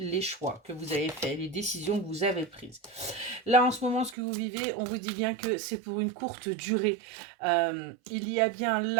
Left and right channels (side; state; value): left; drops out; at 4.2 s